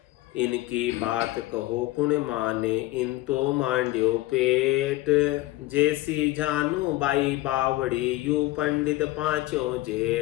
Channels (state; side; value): quieter; right; 18.0 dB